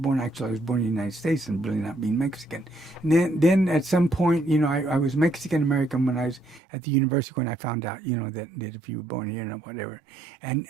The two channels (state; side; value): drops out; left; at 6.6 s